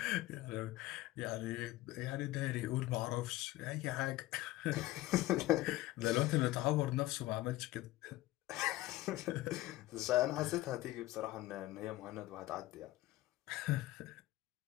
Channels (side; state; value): right; quieter; 17.1 dB